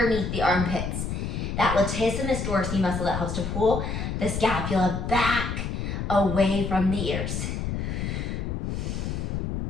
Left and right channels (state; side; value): noise; left; rumble, 3 dB below the sound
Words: the armpits. That latissimus dorsi muscle that helps to pull the scapula back away from the ears.